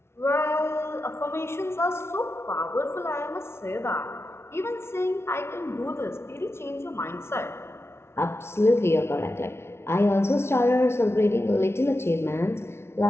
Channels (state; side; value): late; right; 0.12 ms